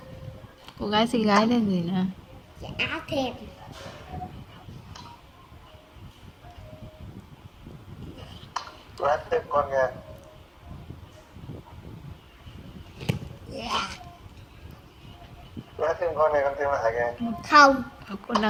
Cô gái xinh gái lên gì nè. Chả thèm. Lát thêm con nha. Yeah. Lát thêm con này con thêm lại kìa. Không. Con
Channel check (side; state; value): both; identical; correlation 1.00